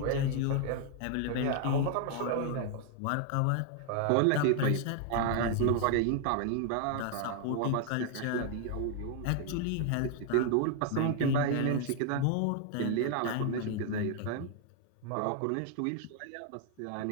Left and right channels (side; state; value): both; different; correlation 0.00